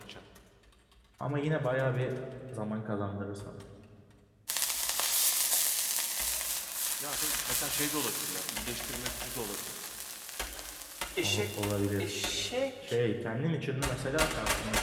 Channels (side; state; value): both; identical; correlation 1.00